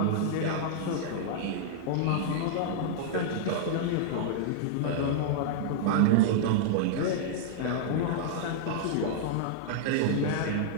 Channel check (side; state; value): both; different; correlation -0.01